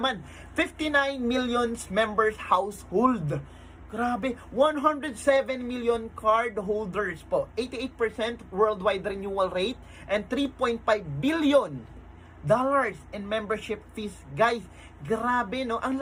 59 million members household. Grabe, 107 million card holders po. 88% worldwide renewal rate and 3.5 billion dollars in membership fees. Guys, grabe, no? Ang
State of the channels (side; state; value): both; identical; correlation 1.00